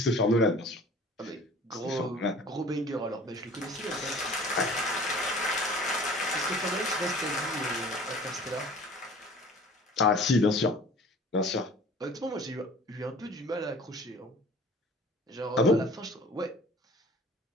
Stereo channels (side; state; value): both; normal; correlation 0.47